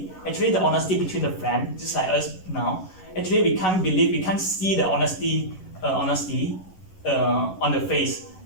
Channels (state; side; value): late; right; 11 ms